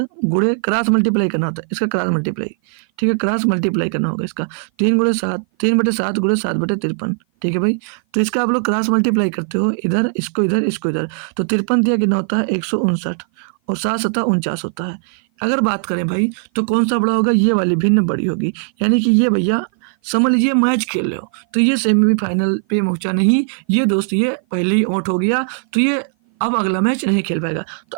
गुणे क्रॉस मल्टीप्लाई करना होता है, इसका क्रॉस मल्टीप्लाई, ठीक है, क्रॉस मल्टीप्लाई करना होगा इसका, 3/7 गुणे 7/53, ठीक है भाई। तो इसका आप लोग क्रॉस मल्टीप्लाई करते हो, इधर इसको इधर इसको इधर, तो 53 दिया कितना होता है 159, और 7 7 49 होता है। अगर बात करें भाई तो कौन सा बड़ा होगा, ये वाली भिन्न बड़ी होगी, यानी कि ये भैया समझ लीजिए मैच खेल रहे हो, तो ये सेमीफाइनल पे पहुंचा नहीं, ये दोस्त ये पहले ही आउट हो गया, तो ये अब अगला मैच नहीं खेल पाएगा। तो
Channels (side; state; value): left; silent; 56 dB below the other